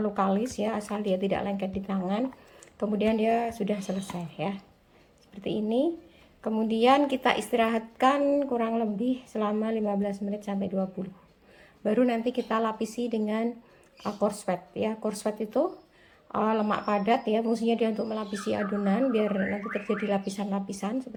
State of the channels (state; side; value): identical; both; correlation 1.00